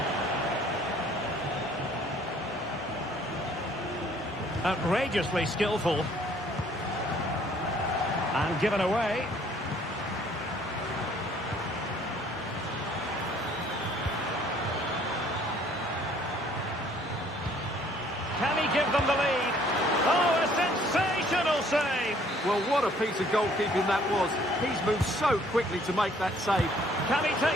Outrageously skillful. And given away. Can he give them the lead? Oh, a sensational save! Well, what a piece of goalkeeping that was. He's moved so quickly to make that save. Can he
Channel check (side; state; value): both; normal; correlation 0.60